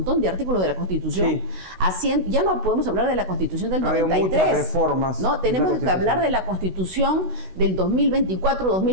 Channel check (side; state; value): left; late; 16 ms